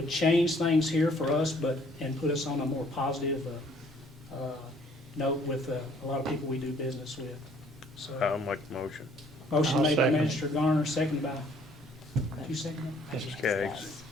change things here for us, and put us on a more positive note with a lot of people we do business with. So, I'll make the motion. motion I'll made by second. Magistrate Garner, seconded by, you second it? Skaggs.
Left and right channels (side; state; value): both; normal; correlation 0.61